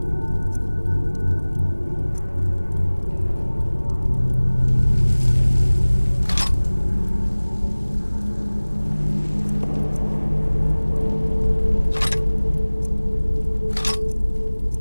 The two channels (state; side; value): inverted; both; correlation -1.00